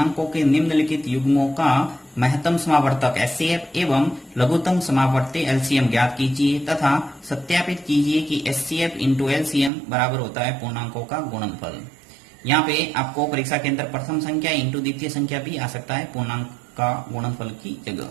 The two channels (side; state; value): left; drops out; at 9.7 s